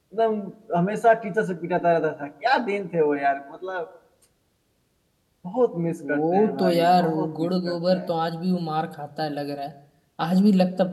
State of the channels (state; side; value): identical; both; correlation 1.00